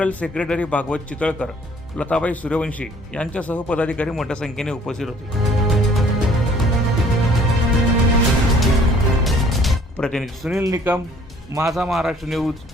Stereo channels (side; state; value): both; normal; correlation 0.56